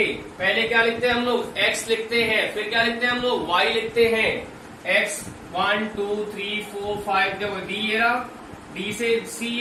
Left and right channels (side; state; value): both; identical; correlation 1.00